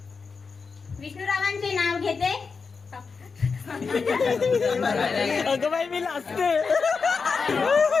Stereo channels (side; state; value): right; quieter; 5.0 dB